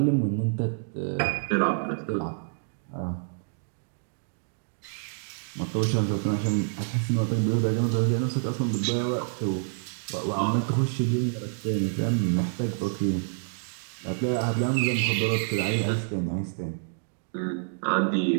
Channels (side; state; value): left; silent; digital silence